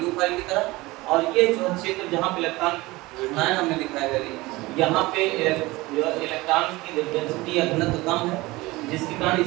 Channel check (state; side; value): quieter; left; 20.8 dB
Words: की तरह, और ये जो क्षेत्र जहाँ पे इलेक्ट्रॉन ऋणायन हमने दिखाया है, यहाँ पे इलेक्ट्रॉन की डेंसिटी या घनत्व कम है, जिसके कारण